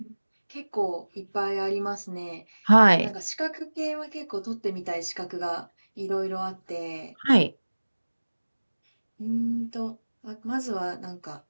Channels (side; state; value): both; inverted; correlation -1.00